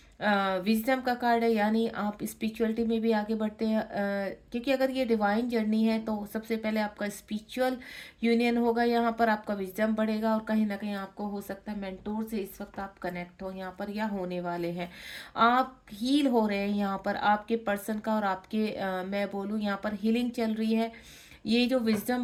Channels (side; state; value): both; identical; correlation 1.00